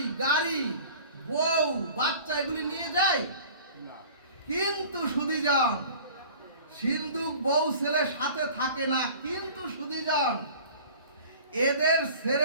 গাড়ি, বউ, বাচ্চা এগুলি নিয়ে যাই? কিন্তু সুধীজন, সিন্ধুক বউ ছেলে সাথে থাকে না, কিন্তু সুধীজন এদের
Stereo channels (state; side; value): inverted; both; correlation -0.44